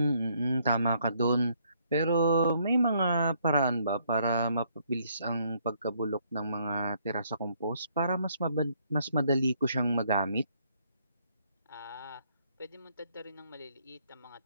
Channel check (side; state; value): both; inverted; correlation -0.69